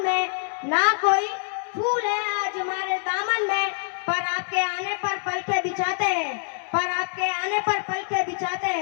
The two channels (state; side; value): silent; right; 62 dB below the other